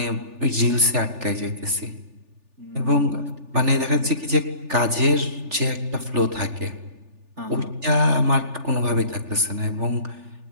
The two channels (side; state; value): left; late; 3.4 ms